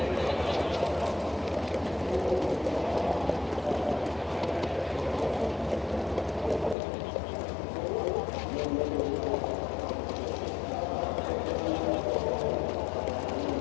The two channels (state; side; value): drops out; right; at 6.8 s